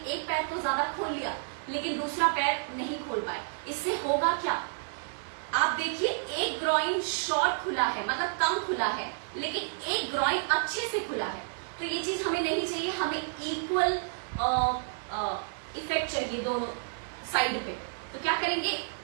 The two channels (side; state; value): left; silent; digital silence